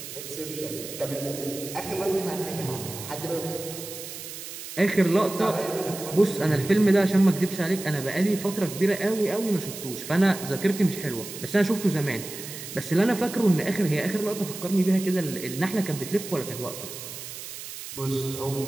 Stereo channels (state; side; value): noise; right; hiss, 10 dB below the sound